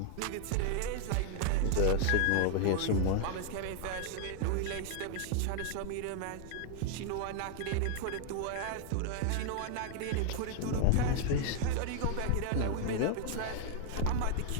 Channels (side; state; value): both; different; correlation 0.00